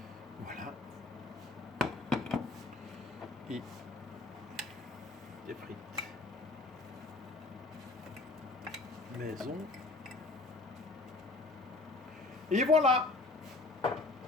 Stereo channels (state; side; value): quieter; right; 3.2 dB